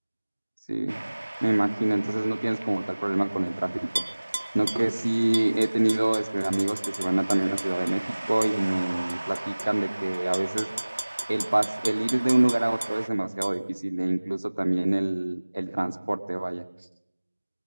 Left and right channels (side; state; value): both; inverted; correlation -1.00